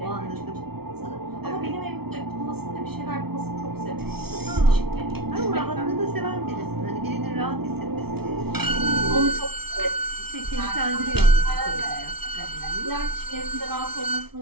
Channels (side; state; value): left; late; 0.95 ms